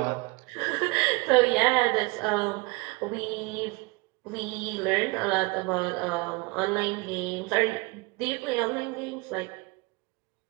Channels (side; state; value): left; quieter; 25.3 dB